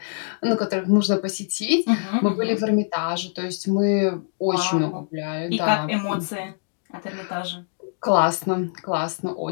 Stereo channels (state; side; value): silent; right; 63 dB below the other